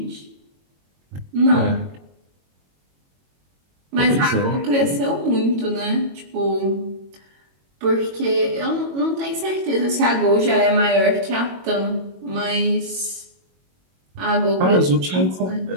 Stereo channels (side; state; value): left; late; 22 ms